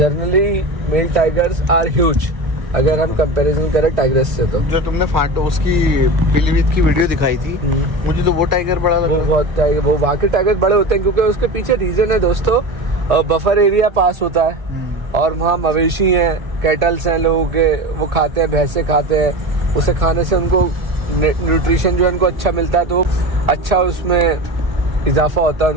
male tigers are huge अगर हम कंपैरिजन करें टाइगर्स से। तो जो तुमने फांटो उसकी पीलीभीत की वीडियो दिखाई थी, मुझे तो वो टाइगर बड़ा लगा। वो बहुत टाइगर, वो वाकई टाइगर बड़े होते हैं क्योंकि उसके पीछे रीजन है दोस्तों, बफर एरिया पास होता है और वहाँ मवेशी हैं, कैटल्स हैं लोगों के, वो खाते हैं, भैंसे खाते हैं। उसे खाने से उनको न्यूट्रिशन जो है उनको अच्छा मिलता है, तो अच्छा उसमें इजाफा होता है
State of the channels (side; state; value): left; late; 1.5 ms